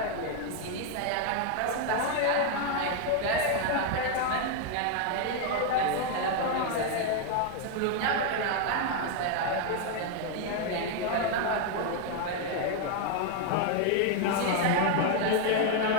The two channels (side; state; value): both; different; correlation 0.00